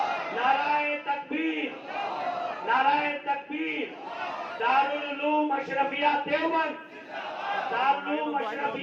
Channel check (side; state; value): both; identical; correlation 1.00